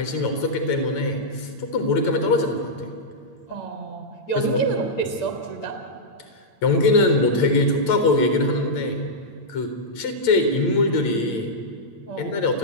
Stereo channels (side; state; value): right; late; 8.9 ms